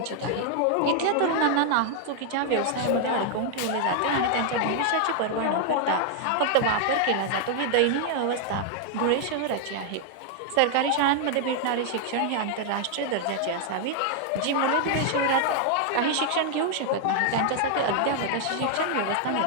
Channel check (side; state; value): both; different; correlation 0.00